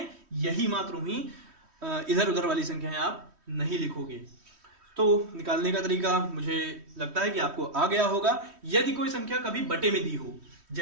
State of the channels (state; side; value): late; left; 3.1 ms